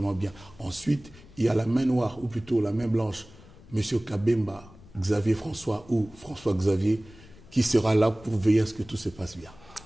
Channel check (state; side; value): noise; left; rumble, 22 dB below the sound